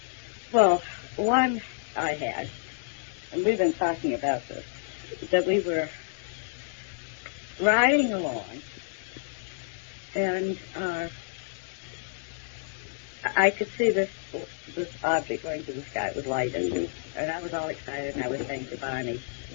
Well, one I had, and we've been talking about this, that we were riding along, and I could see this object going through the sky. It was lighted, Mm-hmm. and I was all excited, and I was saying to Barney,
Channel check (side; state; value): right; silent; digital silence